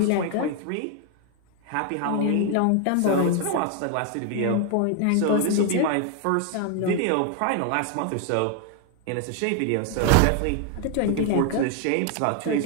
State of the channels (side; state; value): both; different; correlation 0.01